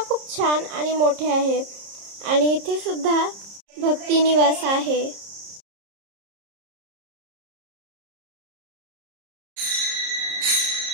खूप छान आणि मोठे आहे आणि इथे सुद्धा भक्ती निवास आहे.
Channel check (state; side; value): late; left; 30 ms